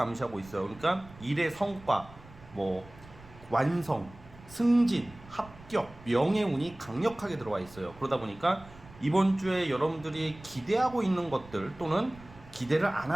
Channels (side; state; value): right; noise; rumble, 21 dB below the sound